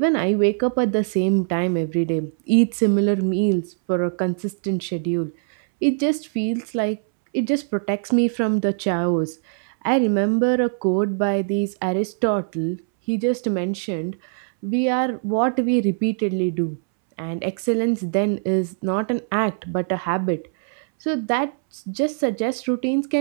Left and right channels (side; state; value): left; silent; 64 dB below the other